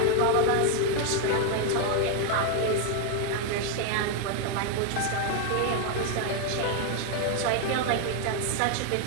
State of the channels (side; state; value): both; different; correlation 0.01